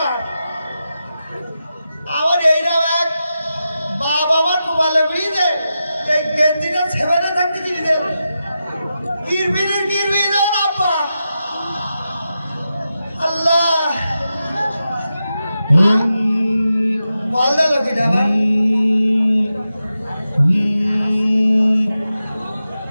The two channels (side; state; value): both; inverted; correlation -0.90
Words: আমার এইরাও এক বাবা আমার মোবাইলে বেরিয়ে এই গেঞ্জিটা সেবারে থাকতে কিনে দেন কিরবি দেন আব্বা আল্লাহ বল দা লোকিটা আমার